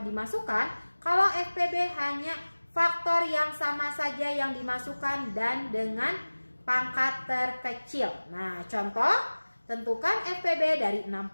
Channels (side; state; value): both; inverted; correlation -1.00